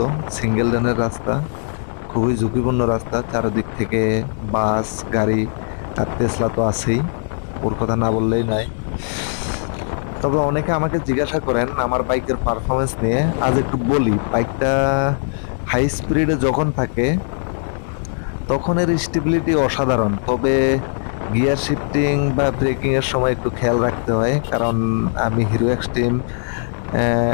সিঙ্গেল লেনের রাস্তা খুবই ঝুঁকিপূর্ণ রাস্তা, চারিদিক থেকে বাস গাড়ি আর টেসলা তো আছেই, ওর কথা না বললেই নাই। তবে অনেকে আমাকে জিজ্ঞাসা করেন আমার বাইকের পারফরমেন্স নিয়ে। আজ একটু বলি, বাইকটা হাই স্পিডে যখন থাকে তখন এর স্টেবিলিটি অসাধারণ, তবে গিয়ার শিফটিং বা ব্রেকিং এর সময় একটু খেয়াল রাখতে হয়, কারণ আমি হিরো এক্সট্রিম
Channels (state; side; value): silent; right; 59 dB below the other